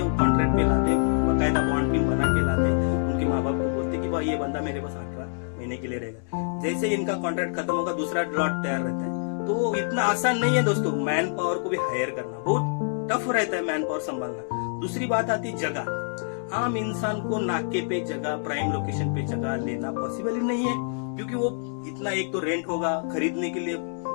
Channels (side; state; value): right; silent; digital silence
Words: वो कॉन्ट्रैक्ट पे लाते, बकायदा बॉन्ड भी बना के लाते। उनके माँ बाप को बोलते कि भाई ये बंदा मेरे पास 18 महीने के लिए रहेगा। जैसे इनका कॉन्ट्रैक्ट खत्म होगा, दूसरा लॉट तैयार रहता है। तो इतना आसान नहीं है दोस्तों, मैन पावर को भी हायर करना बहुत टफ रहता है, मैन पावर संभालना। दूसरी बात आती जगह। आम इंसान को नाके पे जगह, प्राइम लोकेशन पे जगह लेना पॉसिबल ही नहीं है, क्योंकि वो इतना, एक तो रेंट होगा, खरीदने के लिए